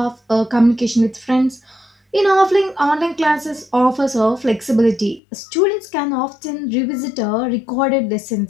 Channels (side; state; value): right; drops out; at 5.2 s